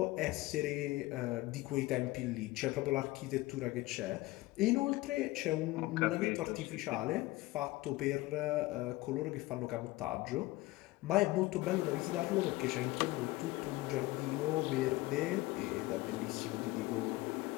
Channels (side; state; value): right; quieter; 19.4 dB